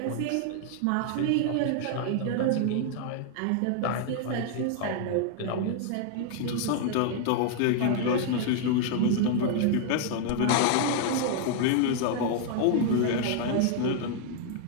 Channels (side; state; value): both; different; correlation 0.00